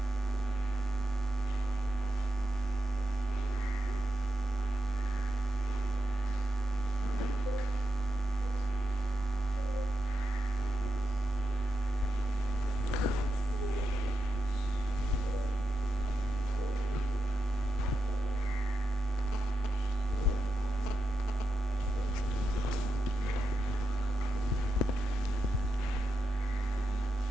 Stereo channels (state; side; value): normal; both; correlation 0.87